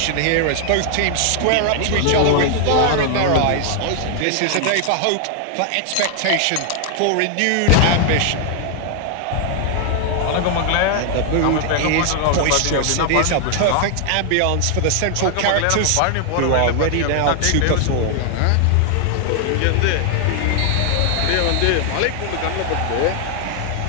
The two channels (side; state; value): both; different; correlation 0.00